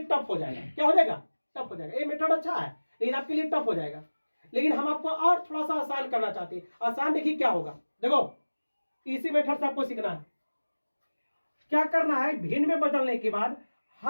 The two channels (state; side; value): inverted; both; correlation -1.00